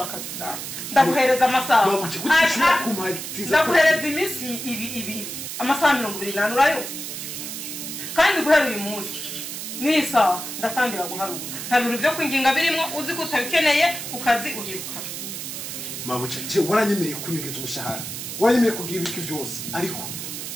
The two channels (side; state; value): right; noise; hiss, 7 dB below the sound